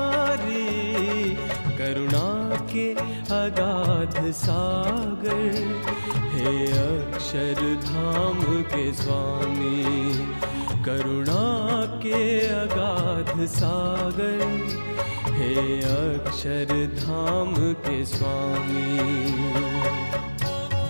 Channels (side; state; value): both; inverted; correlation -1.00